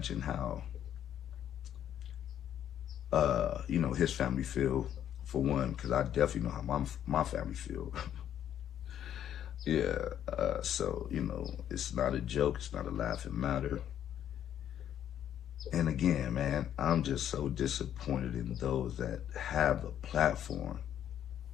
how, you know, his family feel, for one, because I definitely know how my family feel. Yeah, so, you know, it's not a joke, it's not a laughing matter. And again, man, I'm just so disappointed in those that have the platform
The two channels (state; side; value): quieter; right; 10.2 dB